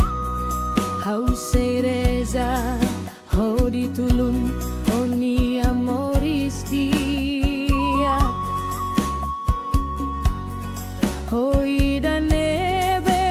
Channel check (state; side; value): identical; both; correlation 1.00